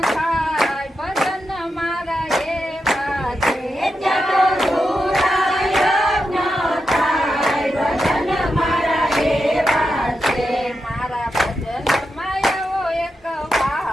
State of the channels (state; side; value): normal; both; correlation 0.87